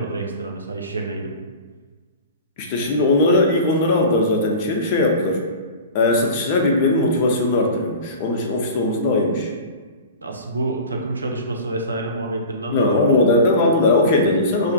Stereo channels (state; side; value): inverted; both; correlation -0.35